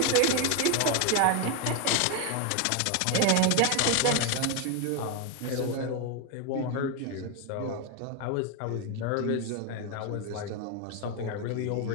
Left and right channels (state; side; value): different; both; correlation 0.01